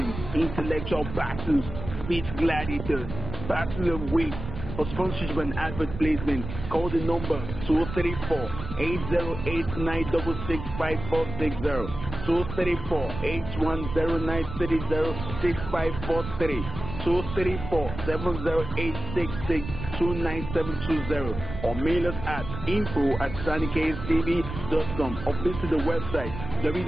intellectual battles, speech gladiators, battle of wits. For sponsorship and advert placement, call the number 234-8089665460, 234-8109306543, 234-708662970, or mail us at info@sannikayztv.com, or visit the website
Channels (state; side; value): noise; right; rumble, 8 dB below the sound